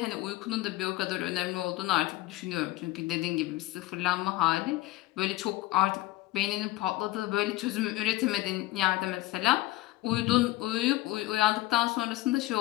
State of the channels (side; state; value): right; quieter; 17.7 dB